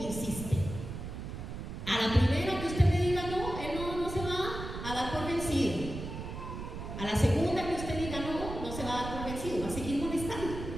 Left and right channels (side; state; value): right; noise; rumble, 8 dB below the sound